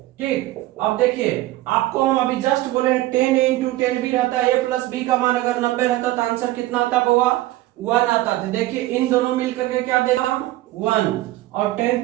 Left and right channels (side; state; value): left; quieter; 17.0 dB